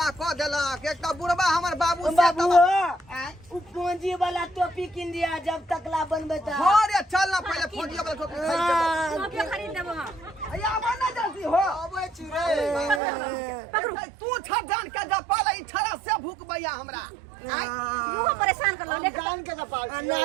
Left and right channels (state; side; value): drops out; left; at 13.0 s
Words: क देलक एकटा बुढ़बा हमर बाबू से बाबू आय उ पूंजी वाला टोपी किन दिया जब तकला बनबे त हो रे चल ना पहले फोड़िया वाला टोपी खरीद देबो टोपी खरीद देबो हम अया बना जल्दी हो अबे छी रे पकड़ू तू छ जान के जा पाला ई छरा से भूकबैया हमरा आय मुंह परेशान कर लो ले जान के जपाल ना